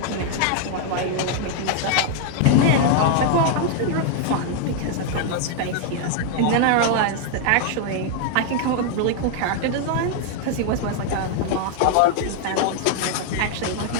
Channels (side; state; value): both; different; correlation 0.00